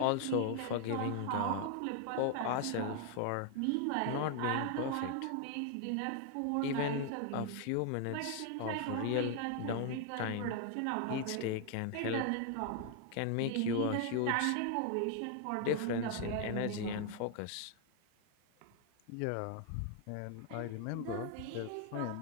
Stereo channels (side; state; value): both; different; correlation 0.00